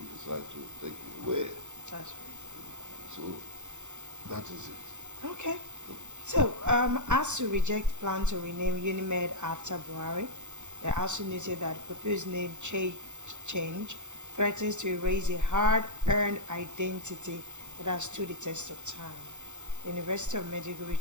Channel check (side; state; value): left; late; 0.84 ms